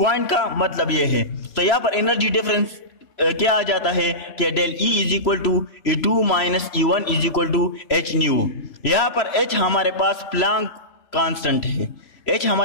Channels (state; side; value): late; right; 3.0 ms